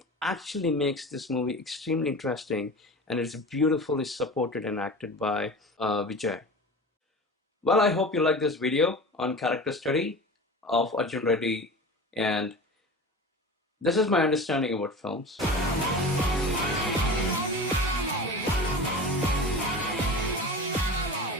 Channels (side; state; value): both; normal; correlation 0.33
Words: actually makes this movie extremely interesting, and it's beautifully supported and acted by Vijay. Well, I hope you like this video on character study of Arjun Reddy, and this is my understanding about films.